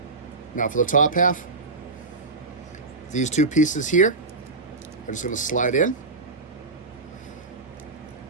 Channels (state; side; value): quieter; left; 3.7 dB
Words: Now for the top half. These two pieces here are just going to slide in.